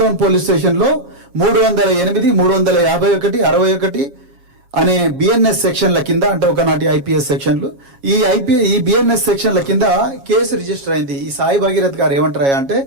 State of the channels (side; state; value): left; late; 7.3 ms